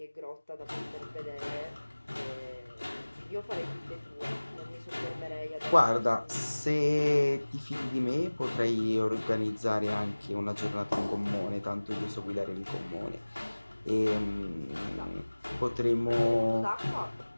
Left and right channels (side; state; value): both; inverted; correlation -1.00